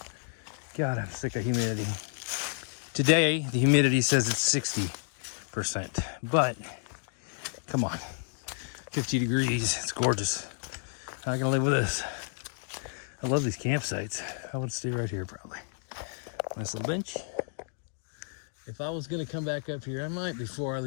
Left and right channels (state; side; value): silent; right; 57 dB below the other